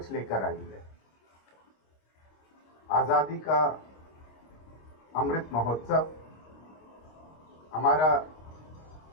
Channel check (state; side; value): late; right; 26 ms